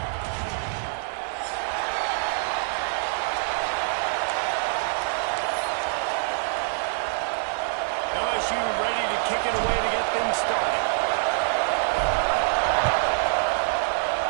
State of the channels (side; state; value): left; silent; digital silence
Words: LSU ready to kick it away to get things started.